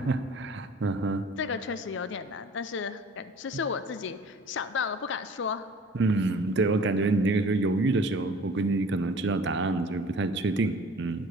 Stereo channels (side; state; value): both; normal; correlation 0.47